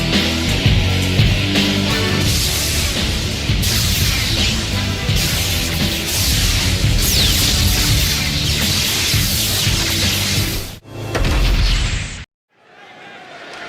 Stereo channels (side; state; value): both; identical; correlation 1.00